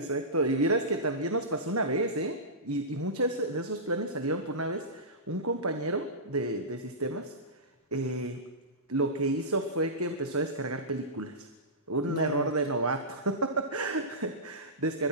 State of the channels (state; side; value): normal; both; correlation -0.18